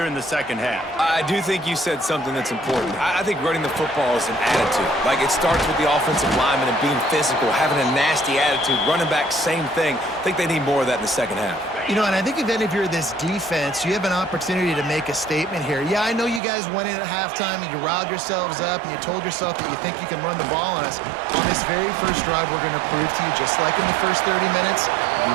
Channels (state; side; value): drops out; left; at 16.4 s